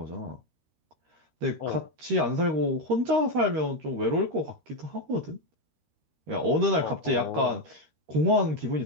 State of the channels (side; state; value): left; late; 13 ms